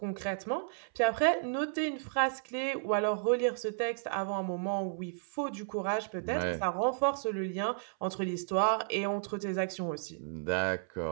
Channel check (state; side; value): silent; left; 56 dB below the other